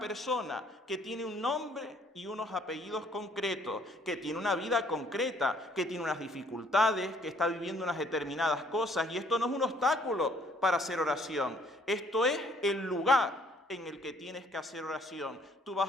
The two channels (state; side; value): normal; both; correlation 0.62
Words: que tiene un nombre y unos apellidos concretos, que tiene una vida concreta, que tiene unas dificultades, que está viviendo unas determinadas cosas, y esto no es un obstáculo para hacer oración, esto es el lugar en el que tienes que hacer oración. Tú